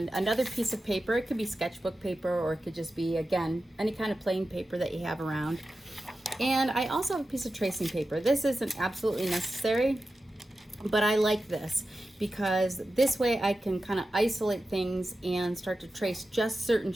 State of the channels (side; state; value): both; normal; correlation 0.92